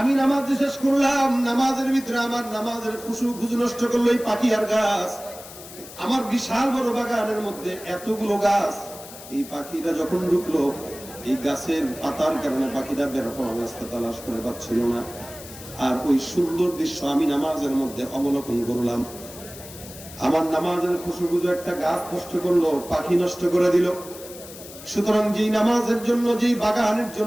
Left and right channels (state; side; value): noise; left; hiss, 16 dB below the sound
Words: নামাজ শেষ করলাম, নামাজের ভিতরে আমার নামাজের খুশু নষ্ট করলো এই পাখি আর গাছ। আমার বিশাল বড় বাগানের মধ্যে এতগুলো গাছ, এই পাখিটা যখন ঢুকলো, এই গাছের পাতার কারণে পাখিটা বের হওয়ার রাস্তা তালাশ করে পাচ্ছিল না। আর ওই সুন্দর দৃশ্য আমি নামাজের মধ্যে অবলোকন করলাম। আমার নামাজের খুশু একটা গাছ নষ্ট করলো, পাখি নষ্ট করে দিল। সুতরাং যেই নামাজের জন্য, যেই বাগানের